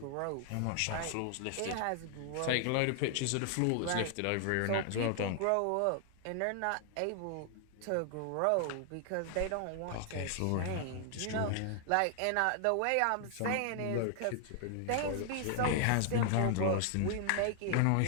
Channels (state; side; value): different; both; correlation 0.00